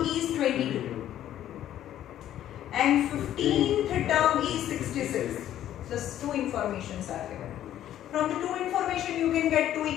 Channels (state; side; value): quieter; right; 11.8 dB